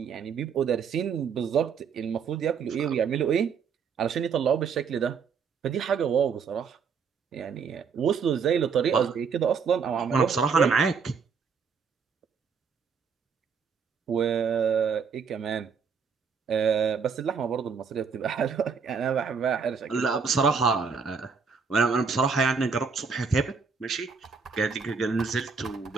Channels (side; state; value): left; quieter; 5.8 dB